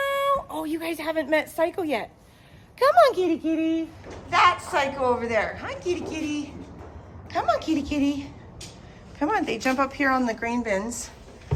Oh, you guys haven't met Psycho yet. Come on, kitty. That's Psycho over there. Hi, kitty. Come on, kitty. Come on, they jump up here on the grain bins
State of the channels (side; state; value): both; identical; correlation 1.00